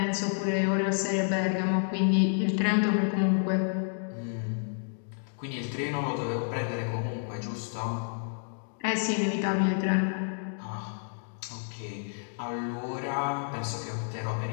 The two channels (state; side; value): silent; right; digital silence